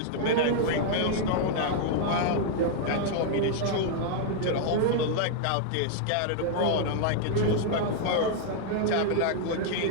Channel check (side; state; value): both; different; correlation -0.01